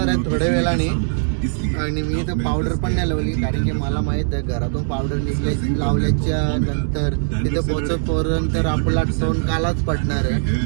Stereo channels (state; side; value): silent; left; 66 dB below the other